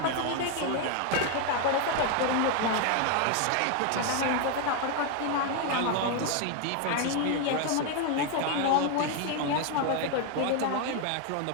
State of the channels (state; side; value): different; both; correlation 0.01